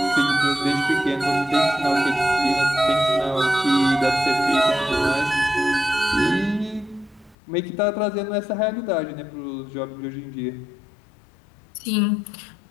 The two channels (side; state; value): right; drops out; at 7.4 s